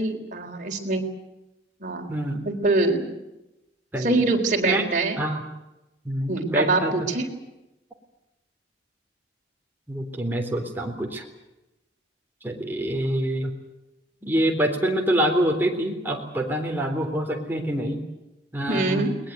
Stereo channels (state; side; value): normal; both; correlation 0.48